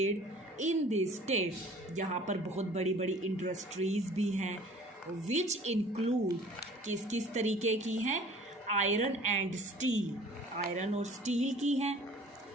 in this state. यहाँ पर बहुत बड़ी बड़ी इंडस्ट्रीज भी हैं विच इंक्लूड, किस किस तरीके की हैं, आयरन एंड स्टील, आयरन और स्टील की हैं,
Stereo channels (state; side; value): normal; both; correlation 0.49